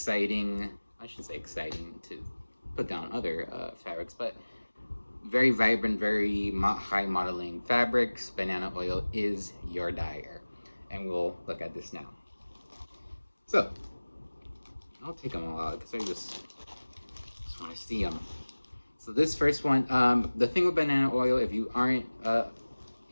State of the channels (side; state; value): both; inverted; correlation -1.00